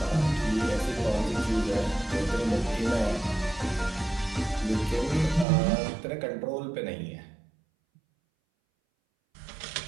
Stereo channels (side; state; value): left; drops out; at 5.5 s